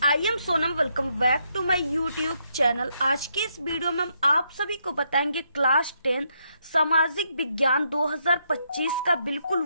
I am Sonam. Welcome back to my YouTube channel. आज के इस वीडियो में हम आप सभी को बताएंगे क्लास 10 सामाजिक विज्ञान 2025 का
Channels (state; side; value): inverted; both; correlation -0.77